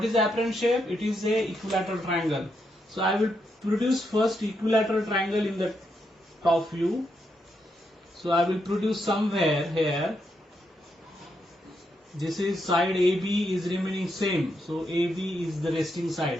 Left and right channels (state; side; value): normal; both; correlation 0.81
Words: is the apparent shape? It is a equilateral triangle. So I will produce first equilateral triangle in the top view. So I will produce somewhere here. This is side AB is remaining same. So AB is the resting